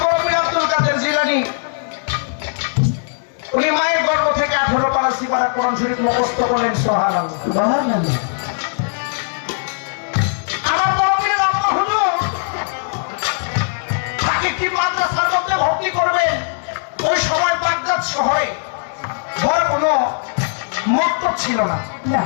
বড় পীর আব্দুল কাদের জিলানী উনি মায়ের গর্ভ থেকে 18 পারা সিপারা কোরআন শরীফ মুখস্থ করলেন। সুবহানাল্লাহ সুবহানাল্লাহ। আমার বড় পীর আব্বা হুজুর তাকে কি মাদ্রাসার মধ্যে ভর্তি করবেন। ওই সময় বাগদাদ শহরে বড় কোনো মক্তব ছিল না।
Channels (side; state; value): right; silent; digital silence